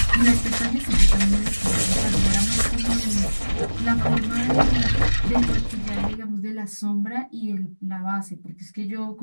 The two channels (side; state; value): both; inverted; correlation -1.00